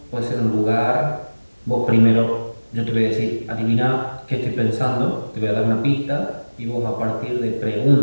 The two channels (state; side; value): inverted; both; correlation -1.00